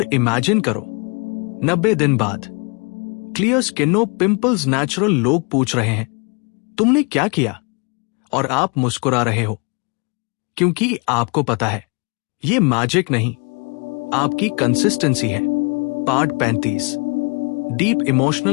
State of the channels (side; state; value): right; quieter; 32.7 dB